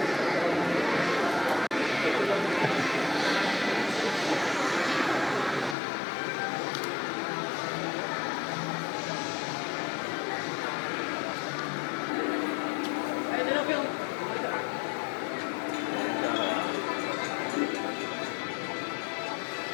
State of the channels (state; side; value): drops out; right; at 5.8 s